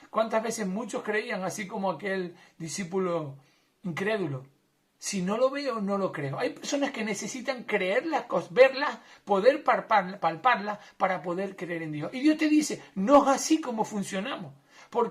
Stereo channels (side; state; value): both; identical; correlation 1.00